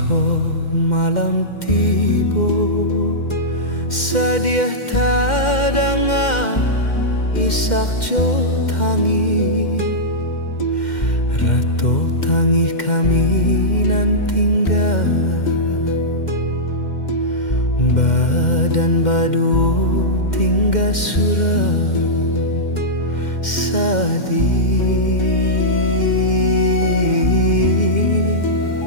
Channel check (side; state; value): right; late; 2.1 ms